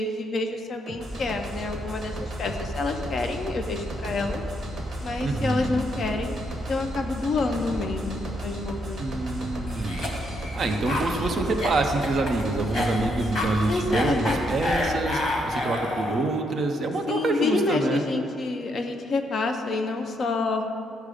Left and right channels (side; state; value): both; normal; correlation 0.76